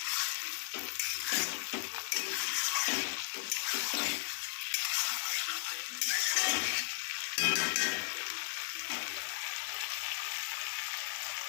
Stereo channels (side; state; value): right; silent; digital silence